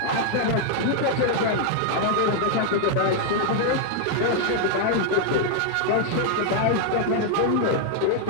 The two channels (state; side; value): different; both; correlation 0.00